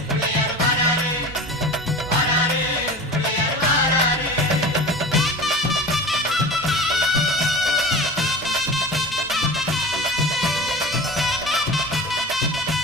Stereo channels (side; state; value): right; noise; rumble, 19 dB below the sound